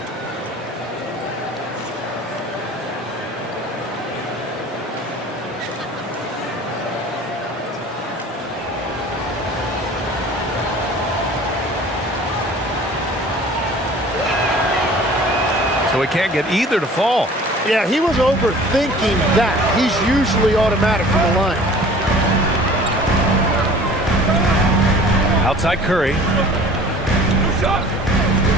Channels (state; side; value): normal; both; correlation 0.46